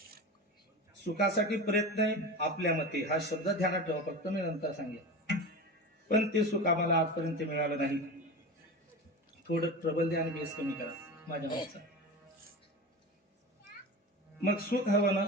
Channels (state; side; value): normal; both; correlation 0.28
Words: सुखासाठी प्रयत्न आहे. आपल्या मते हा शब्द ध्यानात ठेवा, फक्त मी नंतर सांगेन. पण ते सुख आम्हाला आजपर्यंत मिळालं नाही. थोडं प्रबल द्या आणि बेस कमी करा माझ्या भावाचा. मग सुख हवं ना,